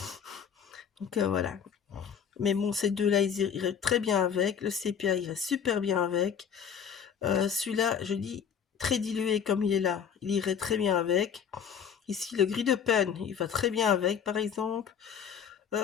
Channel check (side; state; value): right; quieter; 7.7 dB